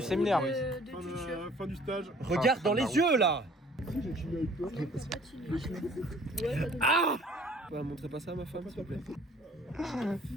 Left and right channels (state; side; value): normal; both; correlation 0.54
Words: séminaire. Fin du stage. Regarde dans les yeux là. Bah, montrez pas ça à ma femme, s'il vous plaît.